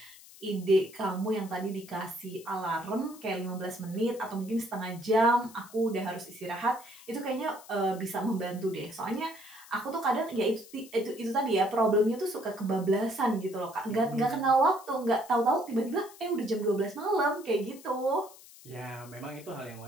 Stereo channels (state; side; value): noise; left; hiss, 20 dB below the sound